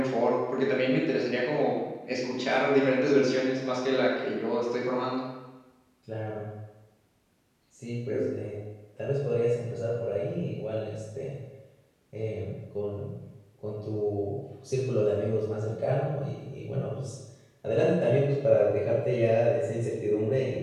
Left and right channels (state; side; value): identical; both; correlation 1.00